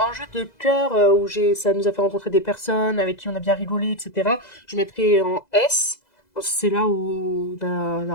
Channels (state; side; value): late; right; 2.0 ms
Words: cœur, où ça nous a fait rencontrer des personnes avec qui on a bien rigolé, etc. Je mettrai en S, c'est là où on a